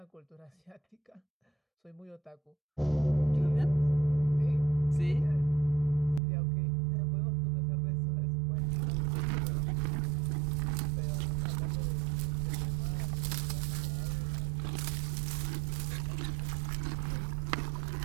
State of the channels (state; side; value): drops out; left; at 6.2 s